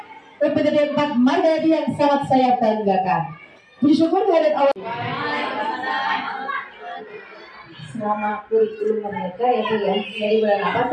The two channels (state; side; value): identical; both; correlation 1.00